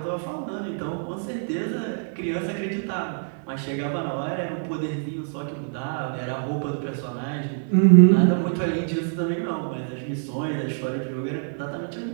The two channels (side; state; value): left; silent; digital silence